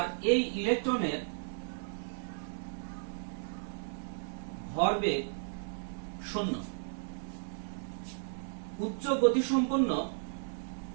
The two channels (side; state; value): left; silent; digital silence